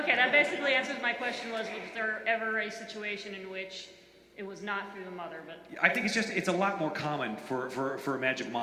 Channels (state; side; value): identical; both; correlation 1.00